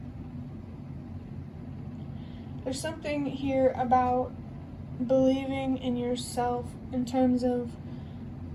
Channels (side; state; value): both; identical; correlation 1.00